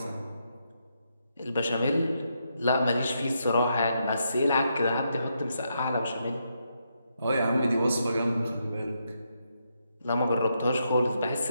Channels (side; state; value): both; inverted; correlation -0.80